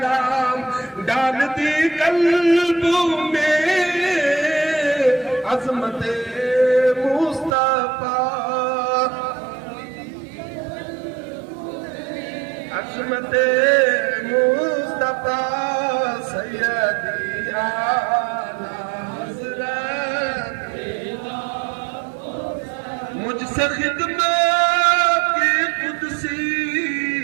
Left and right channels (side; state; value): left; drops out; at 7.6 s